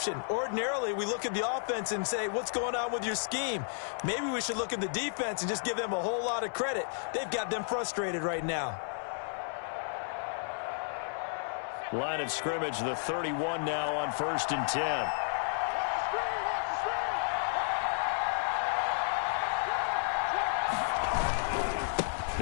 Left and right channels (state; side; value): silent; right; 56 dB below the other